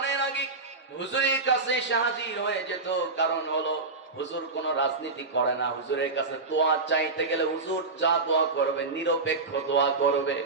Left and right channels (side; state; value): left; quieter; 3.7 dB